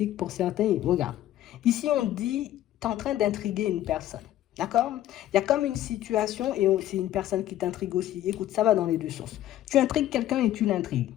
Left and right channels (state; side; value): quieter; right; 13.2 dB